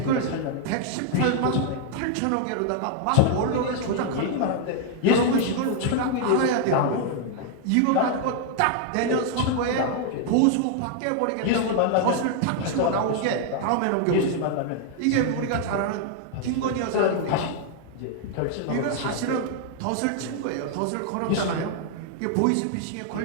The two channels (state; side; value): different; both; correlation 0.00